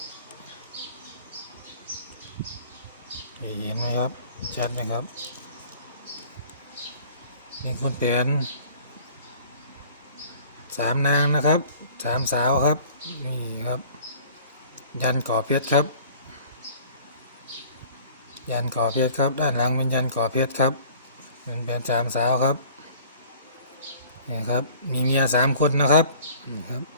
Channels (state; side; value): inverted; both; correlation -0.49